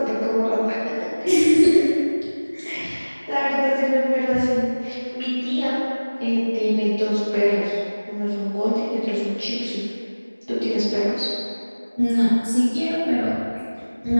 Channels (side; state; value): both; inverted; correlation -1.00